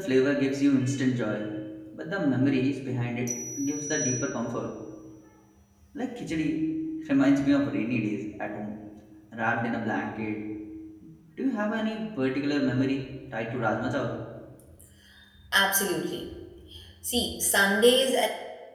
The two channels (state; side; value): identical; both; correlation 1.00